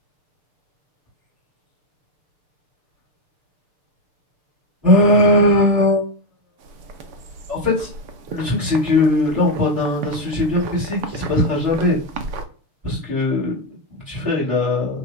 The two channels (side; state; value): left; late; 6.7 ms